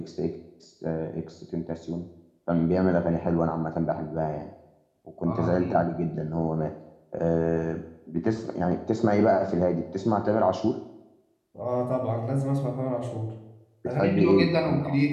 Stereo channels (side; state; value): both; identical; correlation 1.00